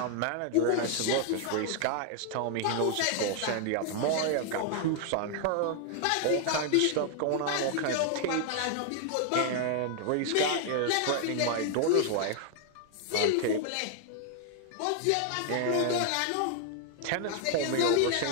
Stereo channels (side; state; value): both; different; correlation 0.00